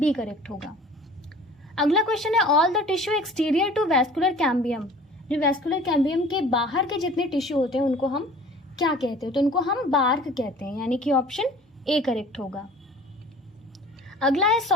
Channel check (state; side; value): normal; both; correlation 0.47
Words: करेक्ट होगा। अगला क्वेश्चन है all the tissue exterior to vascular cambium. जो वैस्कुलर कैम्बियम के बाहर के जितने टिश्यू होते हैं उनको हम क्या कहते हैं? तो उनको हम बार्क कहते हैं, यानी कि ऑप्शन ए करेक्ट होगा। अगला है